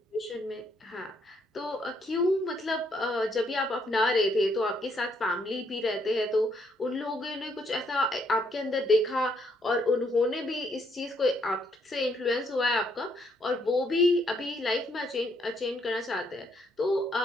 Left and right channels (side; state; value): both; normal; correlation 0.72